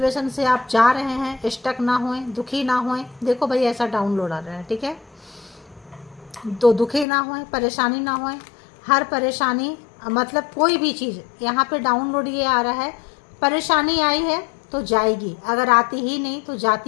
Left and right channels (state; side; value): drops out; right; at 7.1 s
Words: से आप जा रहे हैं, स्टक ना होएं, दुखी ना होएं। देखो भाई, ऐसा डाउनलोड आ रहा है, ठीक है, तो दुखी ना होएं, परेशानी ना होएं। हर परेशानी मतलब कोई भी चीज़ यहाँ पे डाउनलोड ये आ रहा है, परेशानी आई है तो जाएगी, अगर आती ही नहीं तो